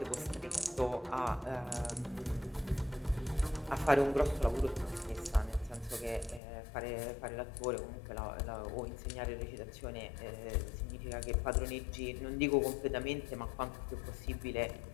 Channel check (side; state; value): right; drops out; at 6.4 s